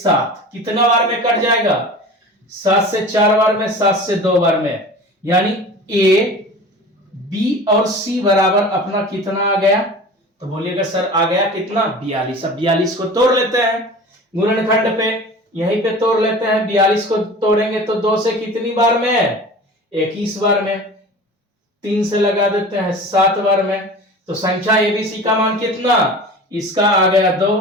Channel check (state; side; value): normal; both; correlation 0.37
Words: कितना बार में कट जाएगा? 7 से 4 बार में, 7 से 2 बार में, यानी ए बी और सी बराबर अपना कितना आ गया? तो बोलिएगा सर आ गया कितना? 42। अब 42 को तोड़ लेते हैं गुणनखंड पे, यहीं पे तोड़ लेते हैं। 42 को तोड़ेंगे तो 2 से कितनी बार में? 21 बार में। 3 से लगा देते हैं 7 बार में। तो संख्या एबीसी का मान कितना? इसका आ गया